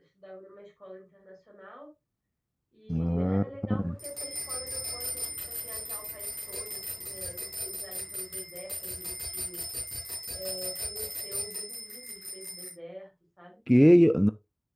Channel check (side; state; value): both; identical; correlation 1.00